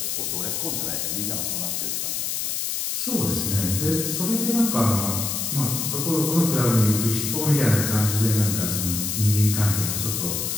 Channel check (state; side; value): noise; left; hiss, 1 dB below the sound